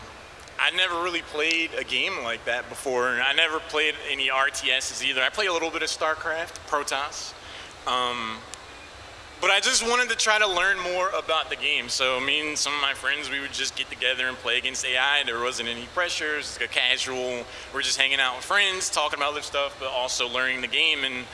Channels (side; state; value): both; identical; correlation 1.00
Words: I never really played a game like that before. I never played any RTSs either. I played a little bit of StarCraft, Protoss. But I just wanted to try to learn more about the game. So me and some of my friends, we would just get together and play against AI. There wasn't any pressure. It was a casual, we're just hanging out with friends, talking about other stuff, but also learning the game. And